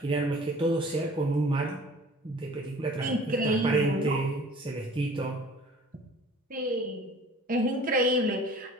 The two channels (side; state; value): both; normal; correlation 0.48